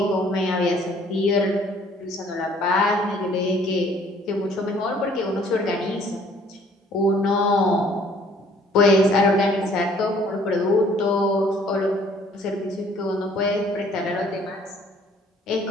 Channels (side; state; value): both; normal; correlation 0.58